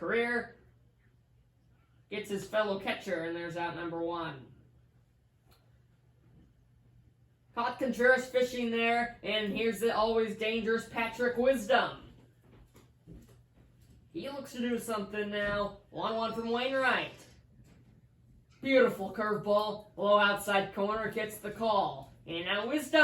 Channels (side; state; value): both; identical; correlation 1.00